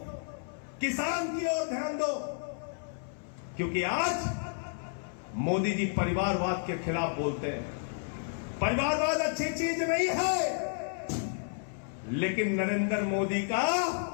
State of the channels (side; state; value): right; silent; 57 dB below the other